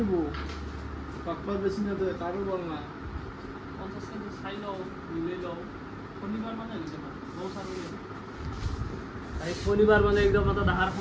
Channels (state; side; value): identical; both; correlation 1.00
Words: পাকপাৰ বেছি না তো কাৰো বল না 50 টাকা চাই লও মিলে লও শনিবাৰ মানে হৈছে না বহুত আৰু এই শনিবাৰ মানে একদম এটা ডাঙৰ